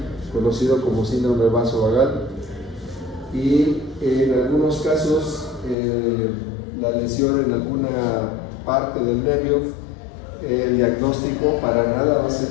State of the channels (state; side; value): drops out; right; at 5.8 s